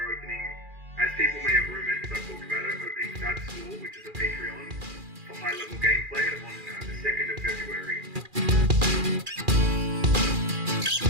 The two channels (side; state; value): left; late; 2.4 ms